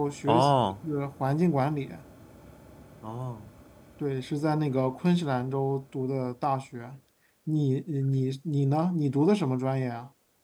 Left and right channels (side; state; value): both; identical; correlation 1.00